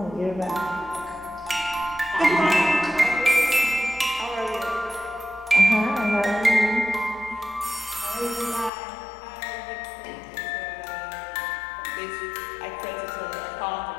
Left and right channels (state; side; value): drops out; right; at 8.7 s